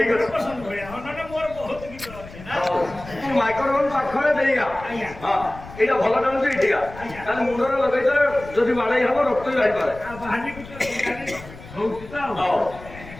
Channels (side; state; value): left; noise; rumble, 16 dB below the sound